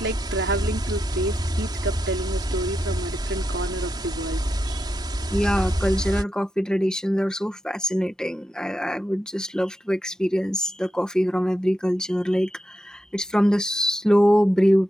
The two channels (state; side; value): normal; both; correlation 0.87